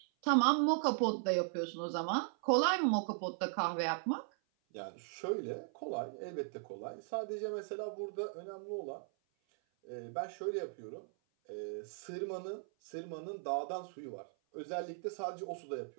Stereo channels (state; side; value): silent; left; 52 dB below the other